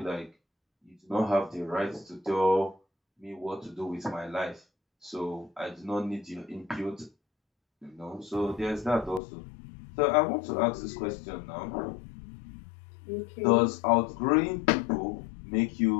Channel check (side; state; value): right; drops out; at 9.2 s